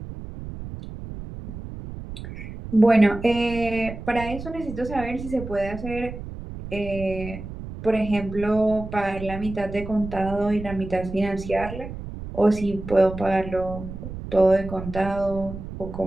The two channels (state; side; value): noise; right; rumble, 10 dB below the sound